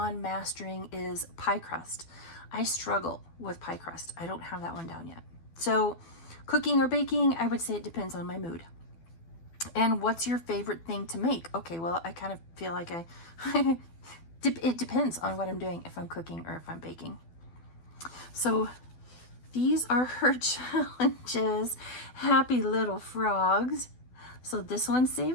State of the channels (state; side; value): late; right; 12 ms